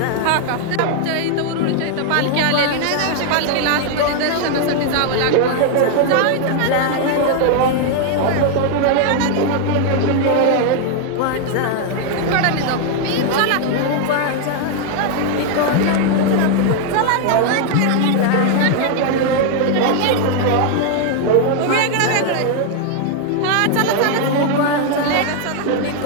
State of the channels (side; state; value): both; different; correlation 0.00